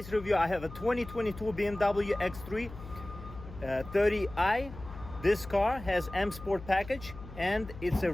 review I have a 2022 BMW X3 30i. This car has M Sport package and it's a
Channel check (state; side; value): noise; left; hum, 14 dB below the sound